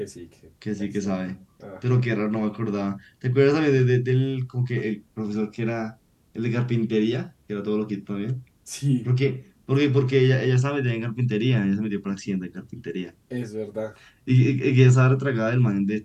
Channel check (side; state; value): both; identical; correlation 1.00